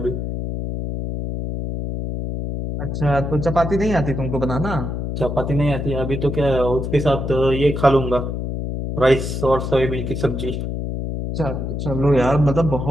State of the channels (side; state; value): left; noise; hum, 3 dB below the sound